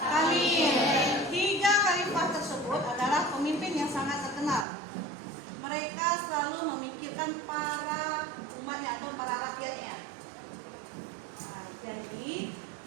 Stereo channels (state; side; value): drops out; left; at 4.7 s